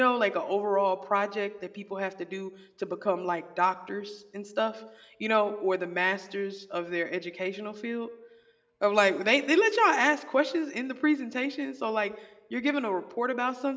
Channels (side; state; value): both; identical; correlation 1.00